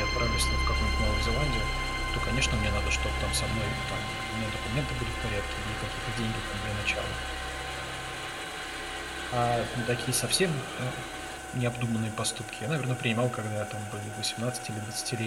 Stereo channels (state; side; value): identical; both; correlation 1.00